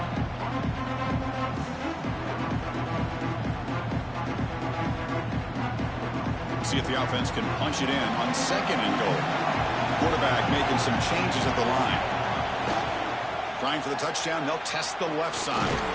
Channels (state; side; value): identical; both; correlation 1.00